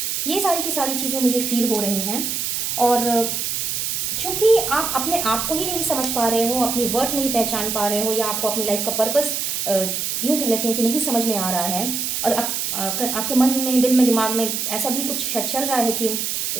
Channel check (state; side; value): noise; right; hiss, 1 dB below the sound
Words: ये सारी की सारी चीज़ें मुझे फील हो रही हैं। और चूँकि आप अपने आप को ही नहीं समझ पा रहे हो, अपनी वर्थ नहीं पहचान पा रहे हो, या आपको अपनी लाइफ का पर्पस यूँ कह लेते हैं कि नहीं समझ में आ रहा है, और आपके मन में, दिल में, दिमाग में ऐसा भी कुछ चल रहा है कि